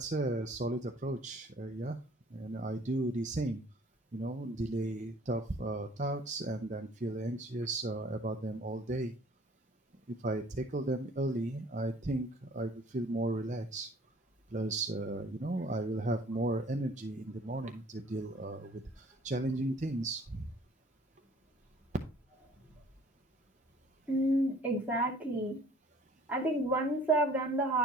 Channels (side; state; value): both; normal; correlation 0.54